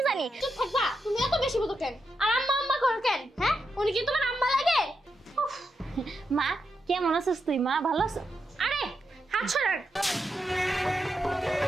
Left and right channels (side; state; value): both; normal; correlation 0.85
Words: জানি। চুপ থাকবা, তুমি এত বেশি বুঝো কেন? আর আম্মা আম্মা করো কেন? হ্যাঁ, উনি কি তোমার আম্মা লাগে? মা কেমন আছিস তুই? মা ভালো আছো? আরে হাত সরান।